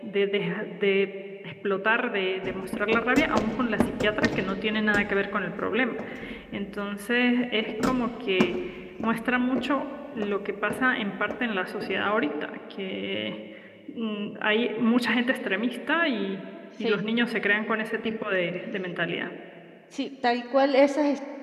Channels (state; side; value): identical; both; correlation 1.00